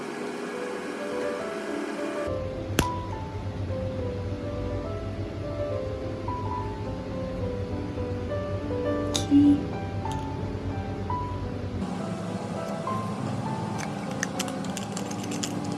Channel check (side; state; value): both; identical; correlation 1.00